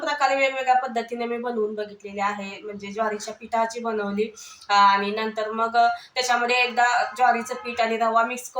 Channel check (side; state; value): both; identical; correlation 1.00